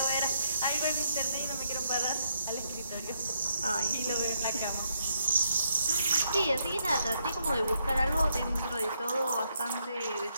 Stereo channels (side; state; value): both; inverted; correlation -0.76